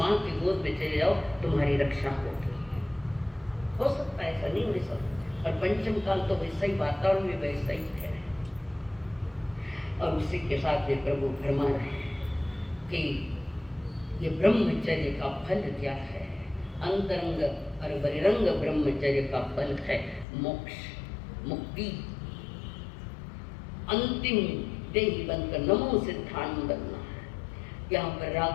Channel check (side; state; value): right; drops out; at 20.2 s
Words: की गोद में चले जाओ, तुम्हारी रक्षा होगी। हो सकता है, ऐसा नहीं हो सकता। और पंचम काल तो वैसा ही, वातावरण भी वैसा ही है। और उसी के साथ ये प्रभु फरमा रहे हैं कि ये ब्रह्मचर्य का फल क्या है। अंतरंग और बहिरंग ब्रह्मचर्य का फल है मोक्ष, मुक्ति, अंतिम देही बनकर नमो सिद्धांत बनना है। यहाँ पर